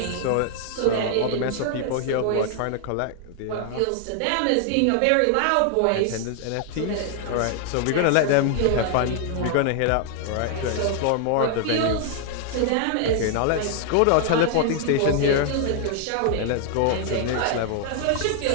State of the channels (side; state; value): both; different; correlation 0.00